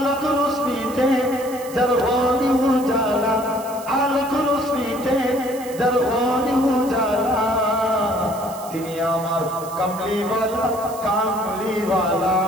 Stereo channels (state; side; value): noise; right; hiss, 17 dB below the sound